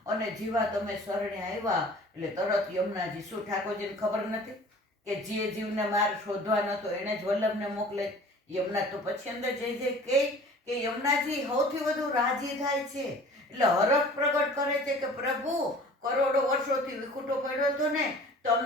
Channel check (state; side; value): normal; both; correlation 0.46